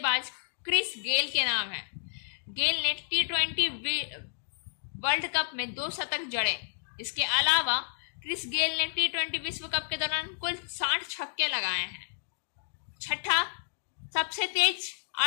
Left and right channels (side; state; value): right; silent; digital silence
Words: क्रिस गेल के नाम है। गेल ने T20 वर्ल्ड कप में 2 शतक जड़े। इसके अलावा क्रिस गेल ने T20 विश्व कप के दौरान कुल 60 छक्के लगाए हैं। छठा, सबसे तेज